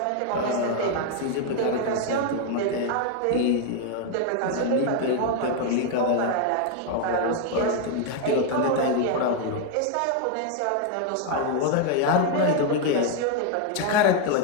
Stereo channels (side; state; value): both; different; correlation 0.00